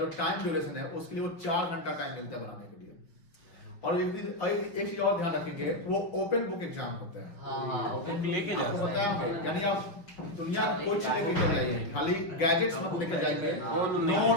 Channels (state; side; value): late; right; 5.9 ms